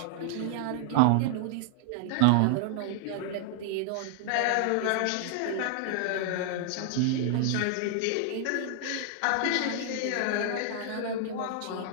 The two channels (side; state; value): both; different; correlation -0.01